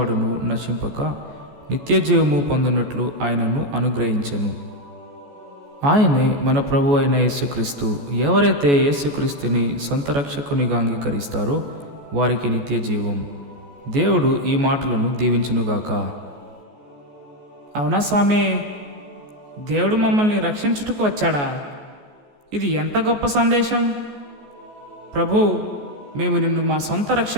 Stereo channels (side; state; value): left; late; 14 ms